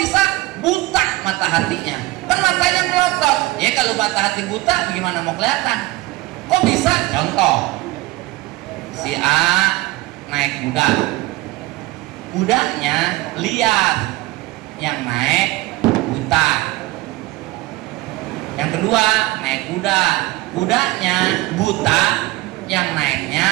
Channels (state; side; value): quieter; left; 19.6 dB